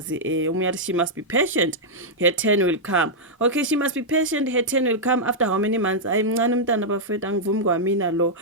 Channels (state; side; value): normal; both; correlation -0.06